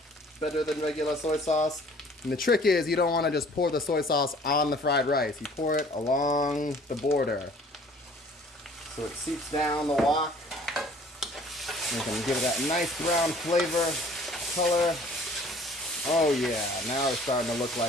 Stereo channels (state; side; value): normal; both; correlation 0.53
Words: better than regular soy sauce. And the trick is you don't want to just pour the soy sauce on the fried rice. You pour it along the border so it seeps down the wok. You can give it that nice brown flavor, color, Oh yeah, now it's starting to look